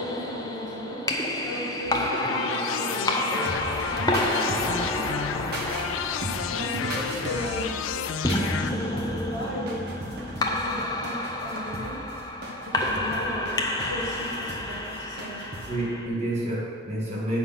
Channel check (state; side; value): normal; both; correlation 0.23